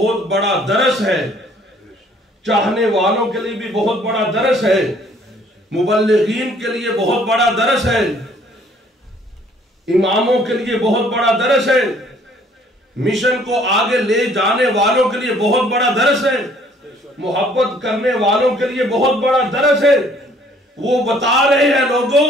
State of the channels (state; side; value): normal; both; correlation 0.60